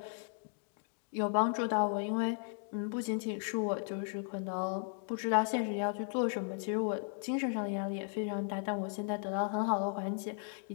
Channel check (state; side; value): silent; right; 54 dB below the other